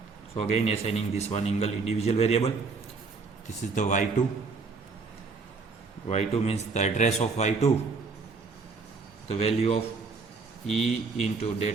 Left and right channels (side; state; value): left; quieter; 4.4 dB